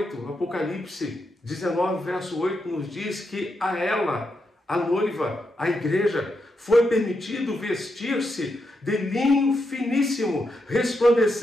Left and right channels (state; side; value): normal; both; correlation 0.84